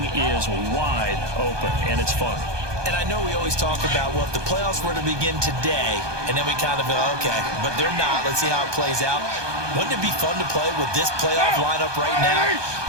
is wide open, and it's fun. And I know we always talk about, well, if the playoffs were to begin today, and then we kind of go, okay, but they're not. Let's see how it plays out. Wouldn't it be fun to play with this playoff lineup right now?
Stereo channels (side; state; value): left; late; 1.2 ms